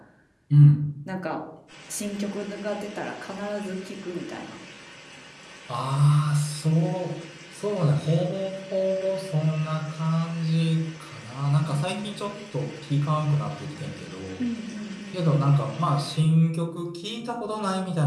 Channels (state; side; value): identical; both; correlation 1.00